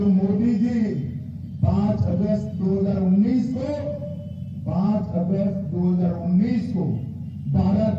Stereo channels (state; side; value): identical; both; correlation 1.00